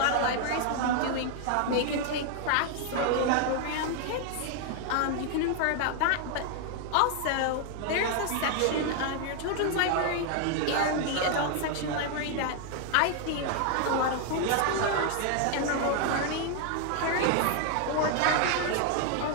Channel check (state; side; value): different; both; correlation 0.00